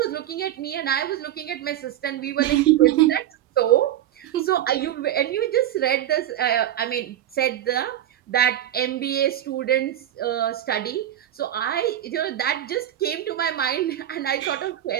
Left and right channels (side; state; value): left; quieter; 12.0 dB